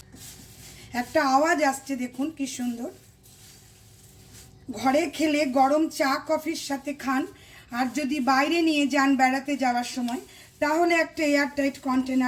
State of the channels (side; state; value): both; identical; correlation 1.00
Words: একটা আওয়াজ আসছে দেখুন কি সুন্দর। ঘরে খেলে গরম চা কফির সাথে খান, আর যদি বাইরে নিয়ে যান বেড়াতে যাওয়ার সময়, তাহলে একটা এয়ারটাইট